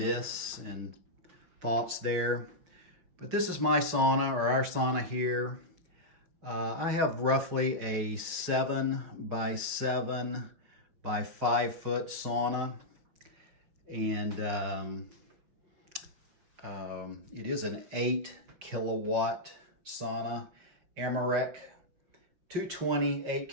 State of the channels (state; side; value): late; left; 5.6 ms